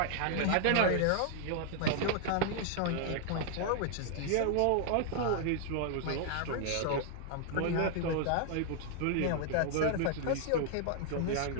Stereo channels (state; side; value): different; both; correlation 0.00